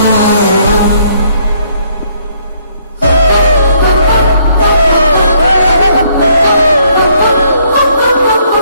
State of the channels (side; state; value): both; inverted; correlation -0.68